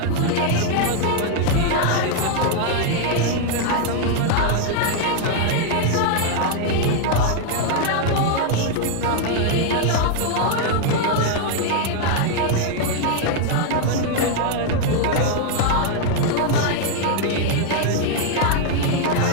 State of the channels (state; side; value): different; both; correlation 0.00